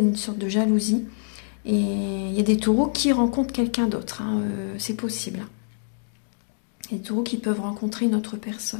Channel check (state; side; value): silent; right; digital silence